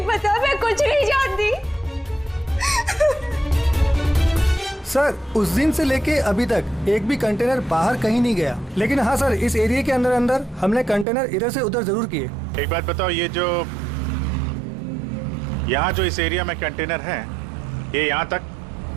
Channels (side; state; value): left; drops out; at 11.1 s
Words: पता, मैं कुछ नहीं जानती। सर उस दिन से लेके अभी तक एक भी कंटेनर बाहर कहीं नहीं गया, लेकिन हाँ सर इस एरिया के अंदर अंदर हमने कंटेनर इधर से उधर जरूर किए। एक बात बताओ, ये जो यहाँ जो इस एरिया में कंटेनर है, ये यहाँ तक